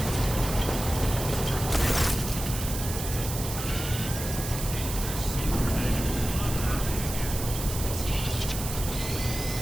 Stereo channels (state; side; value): noise; right; hiss, 7 dB below the sound